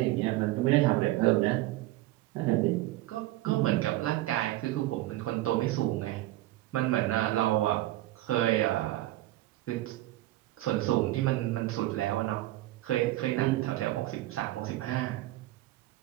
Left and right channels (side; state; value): left; quieter; 16.6 dB